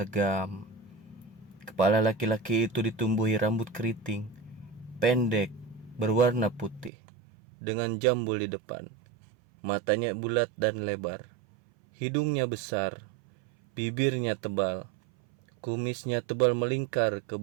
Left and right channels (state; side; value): drops out; left; at 6.9 s